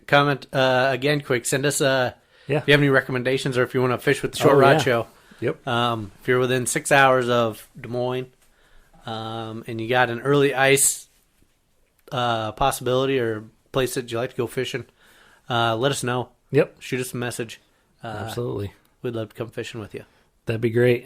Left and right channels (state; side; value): identical; both; correlation 1.00